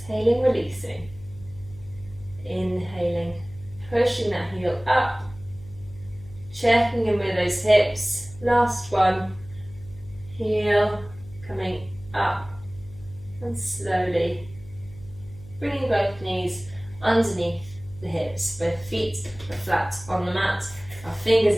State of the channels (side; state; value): left; noise; hum, 19 dB below the sound